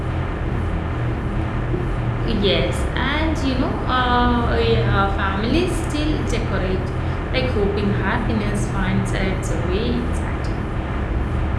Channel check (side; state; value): both; identical; correlation 1.00